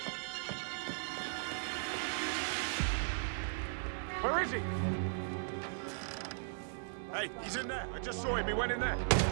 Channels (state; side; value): silent; left; digital silence